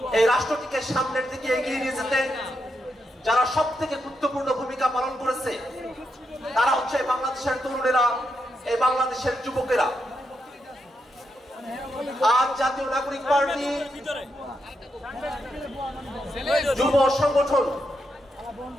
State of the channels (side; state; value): both; normal; correlation 0.83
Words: এই রাষ্ট্রটিকে সামনের দিকে এগিয়ে নিয়ে যেতে যারা সব থেকে গুরুত্বপূর্ণ ভূমিকা পালন করেছে, তারা হচ্ছে বাংলাদেশের তরুণেরা, এই বাংলাদেশের যুবকেরা। আজ জাতীয় নাগরিক পার্টি যুব সংগঠন